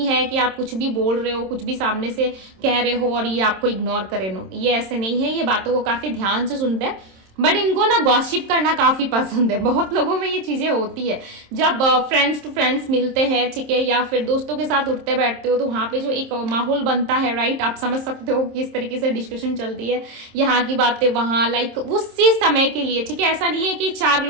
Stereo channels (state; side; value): late; left; 27 ms